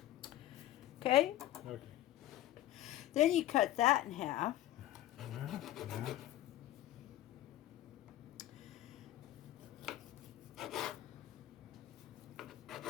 Okay? Okay. Then you cut that in half. Yeah.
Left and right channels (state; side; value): quieter; right; 14.1 dB